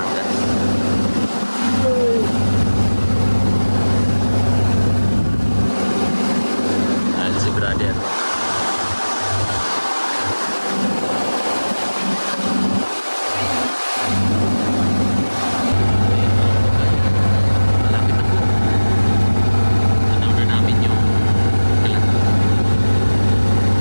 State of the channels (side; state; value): both; inverted; correlation -1.00